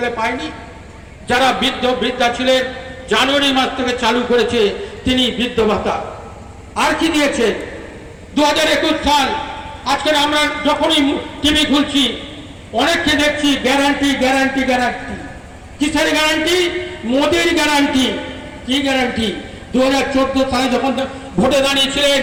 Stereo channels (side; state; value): both; identical; correlation 1.00